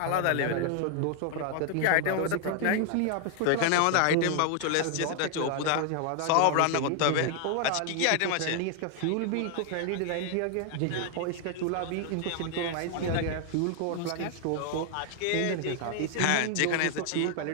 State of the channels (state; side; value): different; both; correlation 0.00